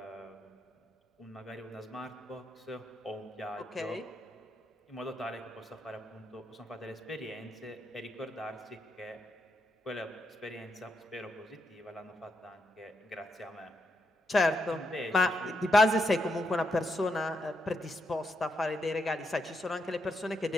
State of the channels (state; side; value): normal; both; correlation 0.81